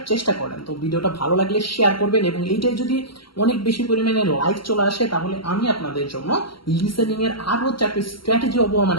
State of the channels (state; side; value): late; right; 0.73 ms